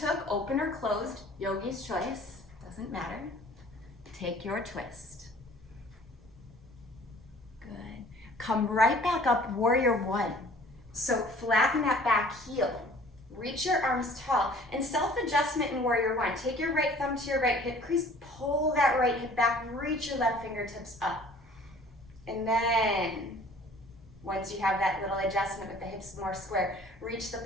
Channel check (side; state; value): both; normal; correlation 0.51